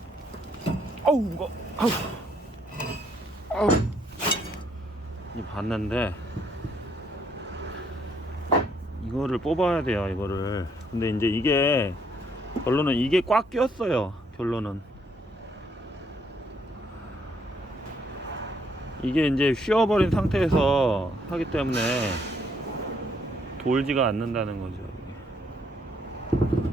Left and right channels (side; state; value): both; normal; correlation 0.70